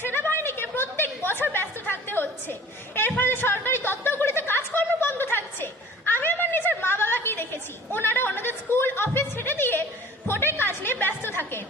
প্রত্যেক বছর ব্যস্ত থাকতে হচ্ছে। এর ফলে সরকারি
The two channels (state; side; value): normal; both; correlation 0.45